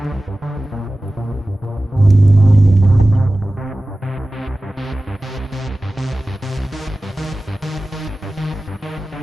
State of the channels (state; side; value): normal; both; correlation 0.96